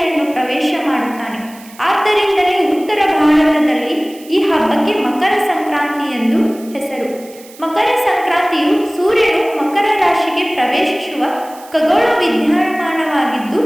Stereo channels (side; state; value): right; noise; hiss, 22 dB below the sound